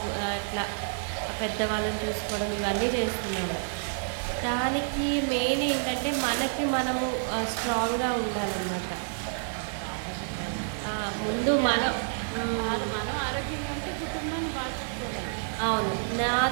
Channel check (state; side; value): silent; left; digital silence